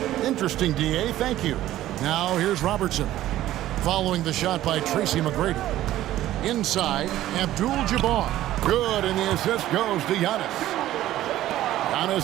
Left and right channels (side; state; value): left; quieter; 14.1 dB